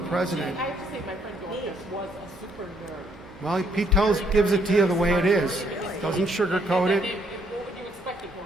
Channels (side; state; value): both; normal; correlation 0.69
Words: I have to say, my friend Dorcas was a super nerd. Well, Pete gives it to you the way it is. Doesn't sugarcoat it. What would you expect a